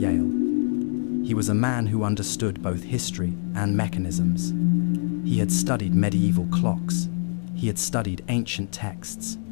He was a man who understood both history and mechanisms. He had studied medieval clocks. He had studied ancient texts.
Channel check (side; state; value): right; silent; digital silence